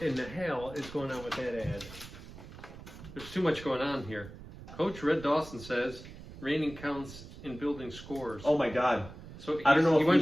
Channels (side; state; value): right; noise; rumble, 15 dB below the sound